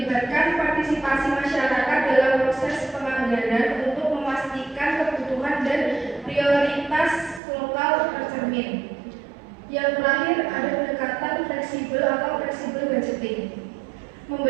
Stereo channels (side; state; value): left; drops out; at 7.4 s